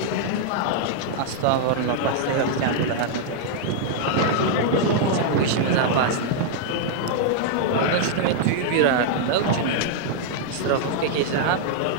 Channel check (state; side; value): different; both; correlation -0.01